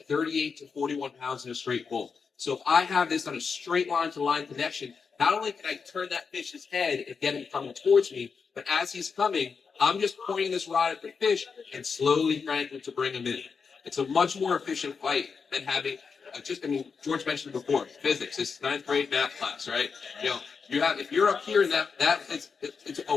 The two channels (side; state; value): right; quieter; 5.5 dB